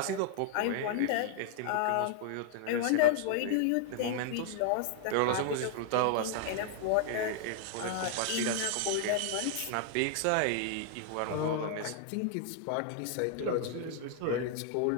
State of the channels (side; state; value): both; different; correlation 0.00